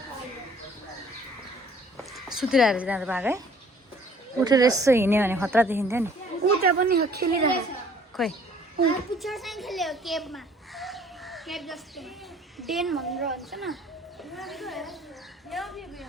सुतिरहेको रहेछ त्यहाँ त बाघ है उठेर यसो हिँड्यो भने खतरा देखिन्थ्यो नि उता पनि खेलिरहेको खोइ पिक्चर चाहिँ खेल्यो केबमा केब जस्तो डेन भनेर भन्छ न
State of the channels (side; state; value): both; normal; correlation 0.55